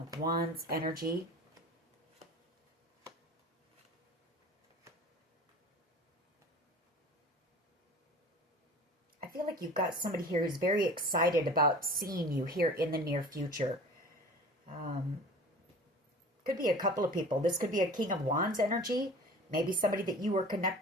Wands energy. I feel like you've got somebody here who's very excited about seeing you here in the near future. Could be a couple of people. This could be a King of Wands energy. Maybe somebody that you were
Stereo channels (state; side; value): normal; both; correlation 0.41